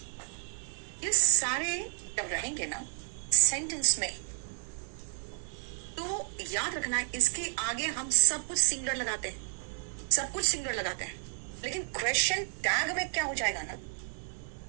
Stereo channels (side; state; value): left; silent; digital silence